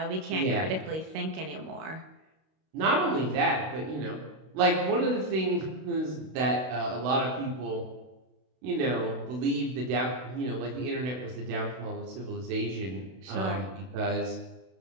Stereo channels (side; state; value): left; late; 32 ms